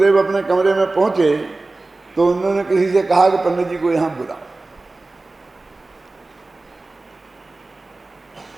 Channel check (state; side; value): quieter; left; 3.2 dB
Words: अपने कमरे में पहुंचे तो उन्होंने किसी से कहा कि पंडित जी को यहां बुलाओ।